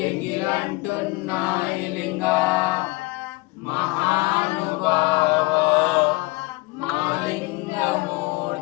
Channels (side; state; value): right; quieter; 23.0 dB